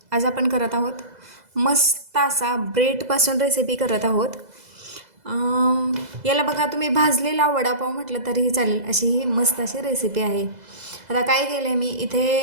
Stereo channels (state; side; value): late; left; 2.0 ms